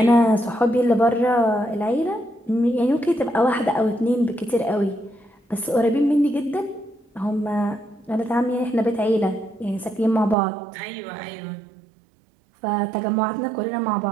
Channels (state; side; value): drops out; left; at 10.4 s